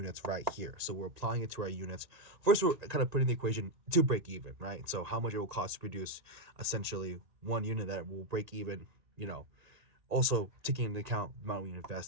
right here. So we're applying it to our units. First, we're kind of putting the equation to break even, right? So how much it will cost to produce essentially one unit that will break even, you know, also taking into account the amount we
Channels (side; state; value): left; late; 1.8 ms